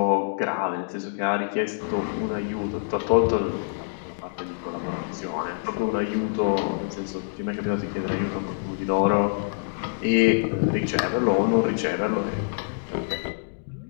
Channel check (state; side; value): silent; right; digital silence